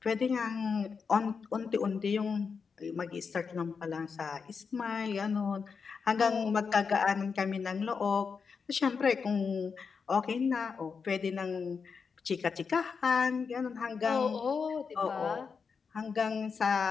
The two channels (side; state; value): right; quieter; 5.6 dB